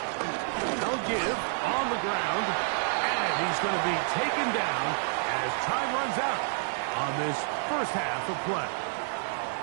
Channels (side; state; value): left; silent; digital silence